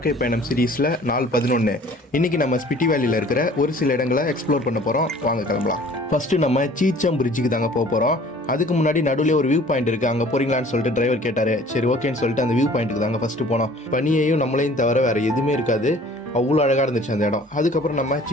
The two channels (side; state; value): both; normal; correlation 0.51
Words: பயணம் சீரீஸில் நாள் 11. இன்றைக்கி நம்ம ஸ்பிட்டி வேலியில் இருக்கிற ஒரு சில இடங்களை எக்ஸ்ப்ளோர் பண்ண போகிறோம். வாங்க கிளம்பலாம். ஃபஸ்ட்டு நம்ம சீச்சம் பிரிட்ஜுக்கு தாங்க போக போகிறோம். அதுக்கு முன்னாடி நடுவில் ஒரு வியூ பாயிண்ட் இருக்குது, அங்கே போகிறீங்களான்னு சொல்லிட்டு டிரைவர் கேட்டார். சரி ஓகேன்னு சொல்லிட்டு அந்த வியூ பாயிண்ட்டுக்கு தாங்க ஃபஸ்ட்டு போனோம். பனியையும் நம்மளையும் தவிர வேறு எதுவுமே இருக்காது, அவ்வளோ அழகாக இருந்துச்சு அந்த இடம். அதுக்கப்புறம் நம்ம